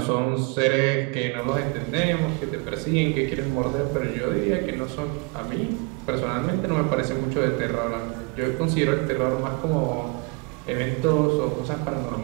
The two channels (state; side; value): quieter; left; 29.4 dB